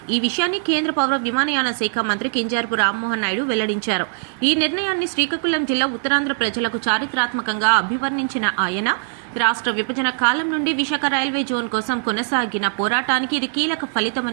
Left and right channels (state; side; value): silent; left; digital silence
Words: ఈ విషయాన్ని కేంద్ర పౌర విమానయాన శాఖ మంత్రి కింజరాపు రామ్మోహన్ నాయుడు వెల్లడించారు. ఈ నిర్ణయాన్ని శ్రీకాకుళం జిల్లా ఉత్తరాంధ్ర ప్రజలకు చారిత్రాత్మకంగా అభివర్ణించిన ఆయన, రాష్ట్ర విభజన కాలం నుండి విశాఖ రైల్వే జోన్ కోసం కొనసాగిన పోరాటానికి ఇది కీలక